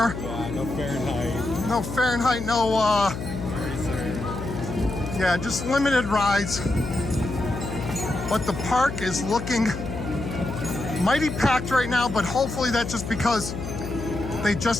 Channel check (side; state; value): left; noise; hum, 7 dB below the sound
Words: Yeah, no Fahrenheit. No Fahrenheit. No. Yeah, just limited rides. But the park is looking mighty packed right now, but hopefully that's just because they